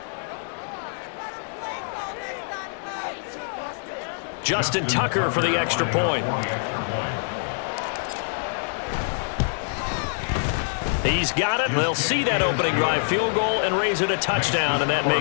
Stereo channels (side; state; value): right; silent; 55 dB below the other